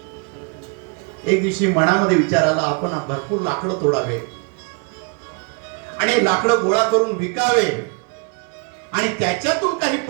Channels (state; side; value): quieter; left; 34.0 dB